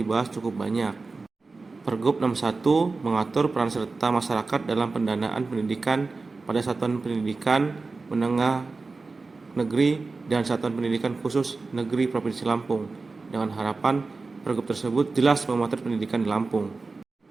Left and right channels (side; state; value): left; quieter; 3.9 dB